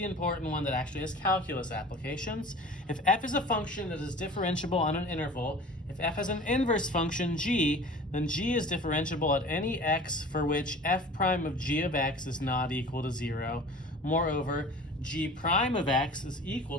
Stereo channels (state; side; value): normal; both; correlation 0.42